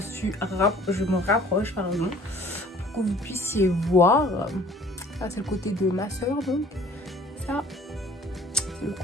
me rapproche, pardon, pour que vous puissiez voir. Ça, c'est le côté de ma soeur, donc. Ça, c'est le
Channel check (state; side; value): normal; both; correlation 0.53